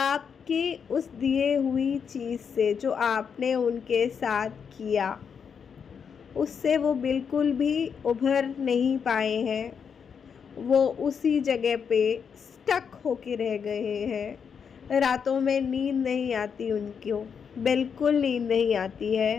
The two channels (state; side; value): quieter; right; 6.8 dB